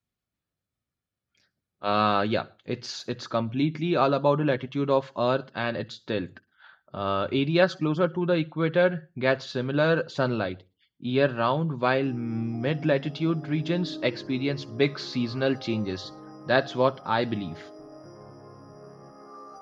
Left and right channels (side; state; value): both; identical; correlation 1.00